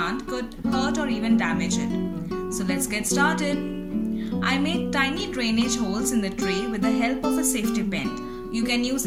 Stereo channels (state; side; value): identical; both; correlation 1.00